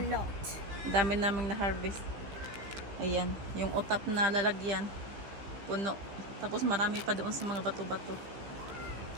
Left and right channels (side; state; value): left; late; 15 ms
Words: Dami naming na-harvest. Ayan, yung utap na lalagyan. Puno. Tapos marami pa doon sa mga bato-bato.